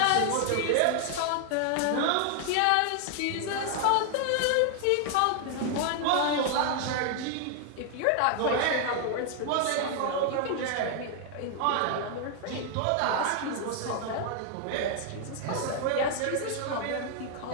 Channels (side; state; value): both; different; correlation 0.00